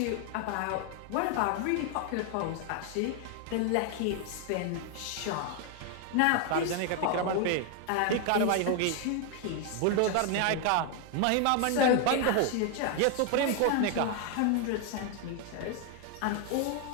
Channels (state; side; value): different; both; correlation 0.01